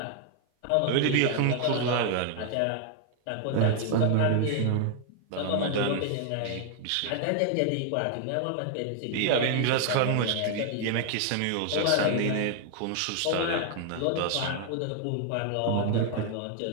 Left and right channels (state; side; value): different; both; correlation 0.00